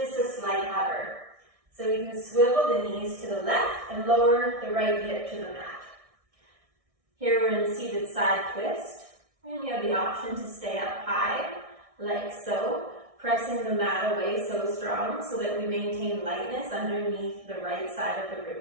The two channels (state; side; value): late; left; 1.6 ms